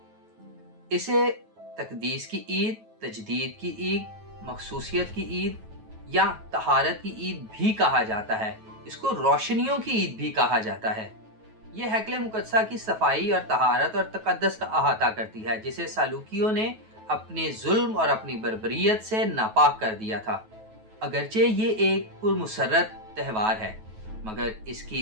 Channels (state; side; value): late; left; 9.2 ms